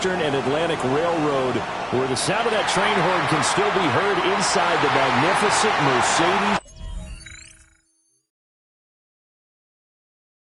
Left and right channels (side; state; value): both; identical; correlation 1.00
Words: and Atlantic Railroad, where the sound of that train horn can still be heard inside the magnificent Mercedes.